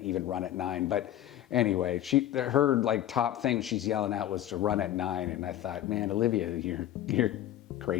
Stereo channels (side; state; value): right; quieter; 12.6 dB